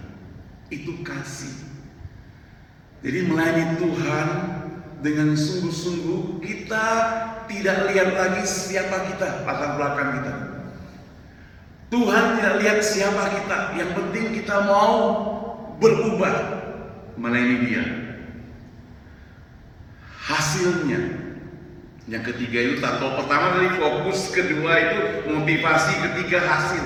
Itu kasih. Jadi melayani Tuhan dengan sungguh-sungguh, kita tidak lihat lagi siapa kita, latar belakang kita. Tuhan tidak lihat siapa kita, yang penting kita mau berubah melayani Dia. Hasilnya, yang ketiga itu tato pertama dari fokus, kedua itu motivasi, ketiga hasil.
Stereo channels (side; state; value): both; identical; correlation 1.00